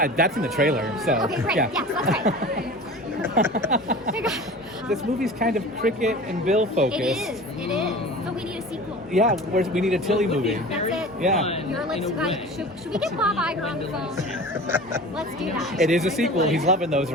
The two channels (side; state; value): both; normal; correlation 0.37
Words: That's in the trailer, so. Okay, great. Yeah. Yes, that's right. This movie's kind of cricket and Bill focused. It is. It is. So we need a sequel. Yeah, we need a Tilly movie. That's it. Yeah. Your lips, should we get Bob Iger on the phone? Let's do that. It is a sequel. He's loving those